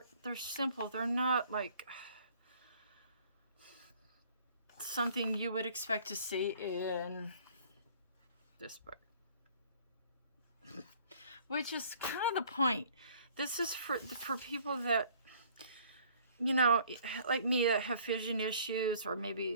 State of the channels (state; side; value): inverted; both; correlation -0.55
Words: they're simple. They're not like something you would expect to see in this book, which is kind of the point. This is for people that, you know, like me, that have vision issues, or